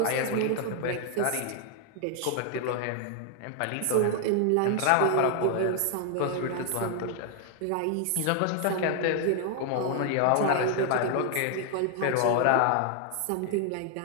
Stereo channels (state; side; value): different; both; correlation 0.00